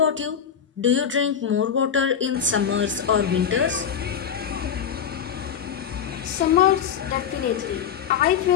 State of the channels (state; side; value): quieter; right; 8.0 dB